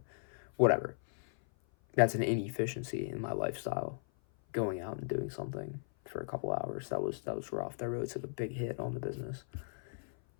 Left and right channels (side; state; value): right; silent; 53 dB below the other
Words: whatever. That's an inefficiency in my lifestyle. Going out and doing something for a couple hours. That was rough. That really took a big hit on the business.